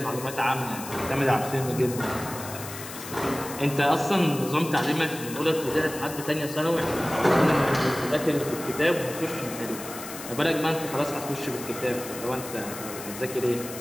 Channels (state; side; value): noise; left; hiss, 11 dB below the sound